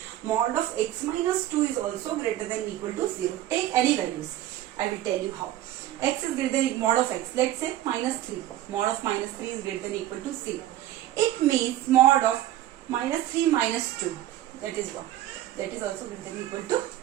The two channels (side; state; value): left; quieter; 13.4 dB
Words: mod of x minus 2 is also greater than equal to 0. Take any values. I will tell you how. X is greater than mod of x. Let's say minus 3. Mod of minus 3 is greater than equal to 0. It means mod of minus 3 minus 2. That is what? That is also greater than equal to